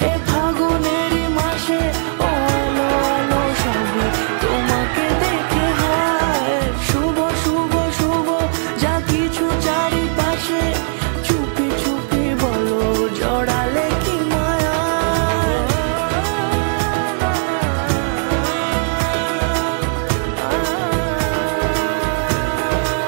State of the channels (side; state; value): left; silent; 67 dB below the other